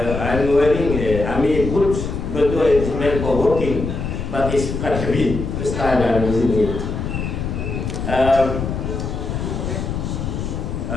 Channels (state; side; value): noise; left; rumble, 4 dB below the sound